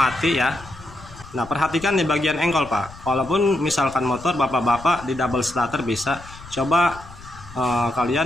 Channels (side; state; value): left; noise; rumble, 18 dB below the sound